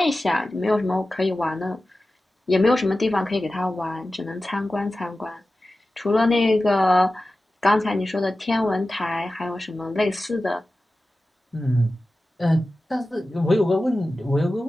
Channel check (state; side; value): normal; both; correlation 0.95